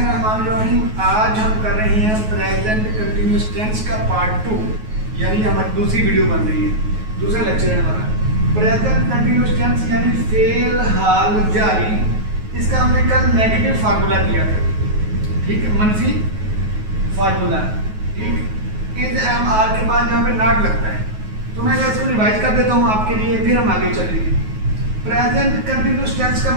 आज हम कर रहे हैं प्रेजेंट कंटिन्यूअस टेंस का पार्ट 2, यानी हमारी दूसरी वीडियो बन रही है, दूसरा लेक्चर है हमारा। प्रेजेंट कंटिन्यूअस टेंस यानी फेल हाल जारी। इसका हमने कल नेगेटिव फार्मूला किया था, ठीक है, मनफी फार्मूला, ठीक। इज एम आर के बाद यहाँ पे नॉट लगता है, तो मैं इसको रिवाइज कर देता हूँ आपके लिए, फिर हम आगे चलेंगे। प्रेजेंट कंटिन्यूअस टेंस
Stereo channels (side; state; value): left; late; 9.4 ms